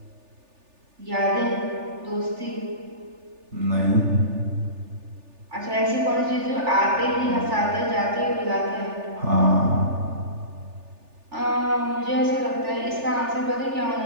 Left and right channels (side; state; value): left; late; 3.4 ms